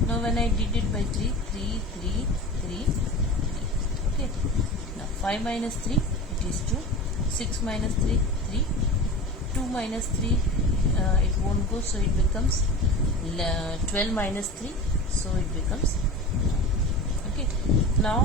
Now when I did it by 3, 3, 3, 3, 3. Okay. Now 5 minus 3, it is 2. 6 minus 3, 3. 2 minus 3, it won't go, so it becomes 12 minus 3, so it becomes 9. Okay.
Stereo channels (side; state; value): both; normal; correlation 0.32